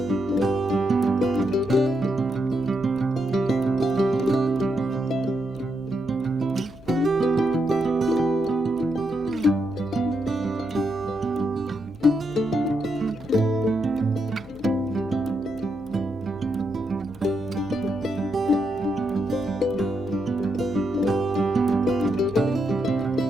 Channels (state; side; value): noise; left; hum, 22 dB below the sound